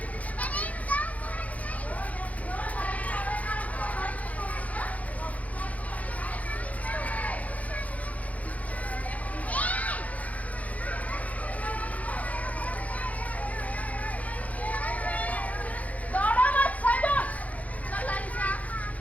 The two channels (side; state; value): right; late; 0.070 ms